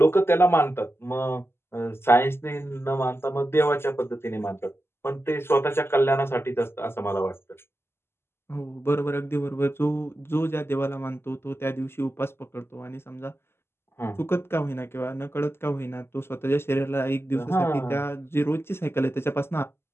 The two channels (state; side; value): late; right; 0.12 ms